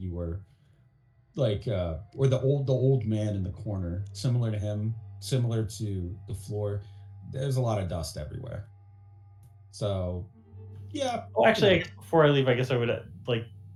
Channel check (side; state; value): both; identical; correlation 1.00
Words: were like, or the old man in the corner, similar to him, similar to the floor. There's a lot of dust everywhere. So, yeah. Oh, actually, I guess before I leave, I guess I would